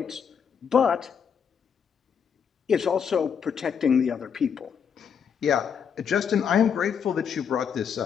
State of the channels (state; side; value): quieter; right; 7.2 dB